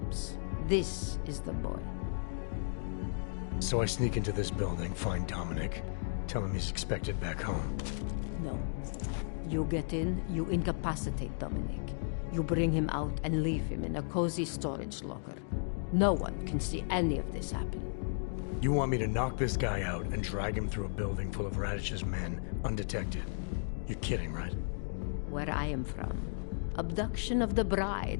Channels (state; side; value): silent; right; digital silence